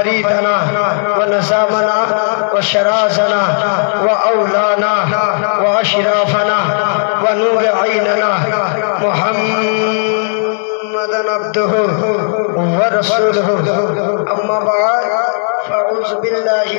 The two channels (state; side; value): silent; right; digital silence